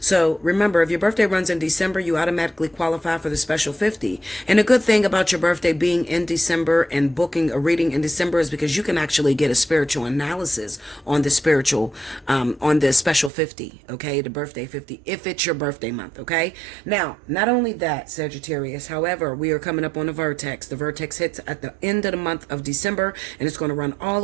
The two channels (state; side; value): drops out; left; at 13.3 s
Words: remember, if your birthday runs in December, you automatically qualify for the special 50. And a good thing about your birthday being in December and booking a reading in December is because you can actually get a spiritual analysis on the on the special 50, okay? The birthday 50, if it's your birthday month, okay? Now, not only that, Sagittarius, however, we are coming up on the vertex. The vertex hits at the end of the month of December, and it's going to run all